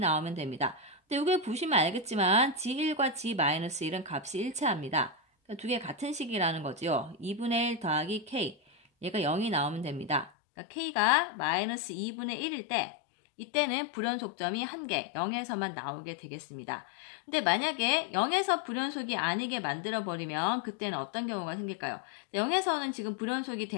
됩니다. 근데 여기 보시면 알겠지만 g1과 g-1은 값이 일치합니다. 그러니까 두 개 같은 식이라는 거죠. 2분의 1 더하기 k 얘가 0이 나오면 됩니다. 그러니까 k가 마이너스 2분의 1일 때 이때는 불연속점이 한 개, 0에서만 나오게 되겠습니다. 근데 만약에 0에서 불연속이 아니게 만들어버리면 그때는 어떤 경우가 생길까요? 0에서는 지금 불연속이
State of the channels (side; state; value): right; drops out; at 10.3 s